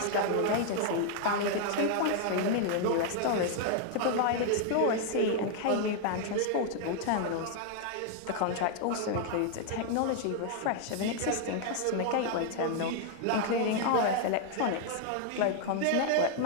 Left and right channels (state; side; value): different; both; correlation 0.00